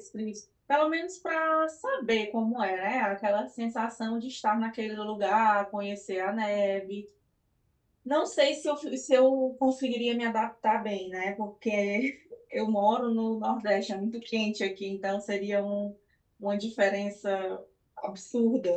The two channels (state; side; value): identical; both; correlation 1.00